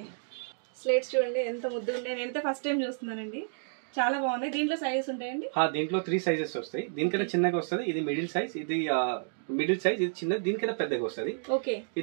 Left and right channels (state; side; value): silent; left; digital silence